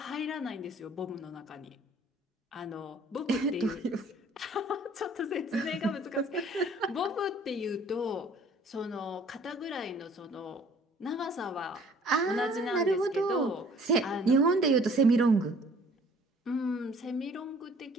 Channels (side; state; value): both; normal; correlation 0.54